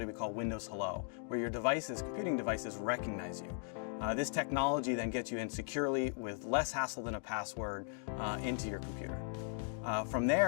we call Windows Hello, where your computing devices recognize you. This technology then gets you in securely with less hassle than a password into your computer. From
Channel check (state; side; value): silent; right; 53 dB below the other